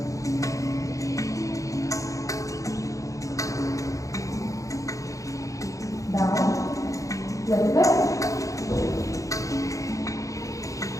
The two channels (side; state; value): right; late; 0.16 ms